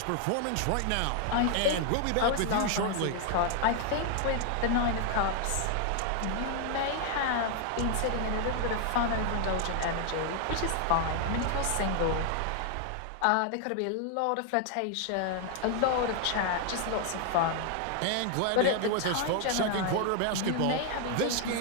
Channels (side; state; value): both; different; correlation 0.00